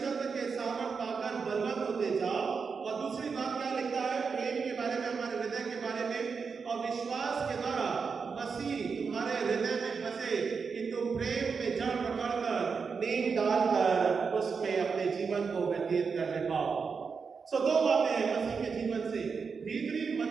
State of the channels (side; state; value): left; quieter; 5.4 dB